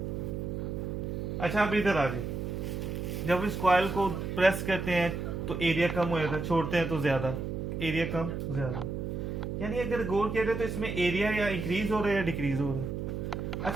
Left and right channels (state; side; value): noise; right; hum, 4 dB below the sound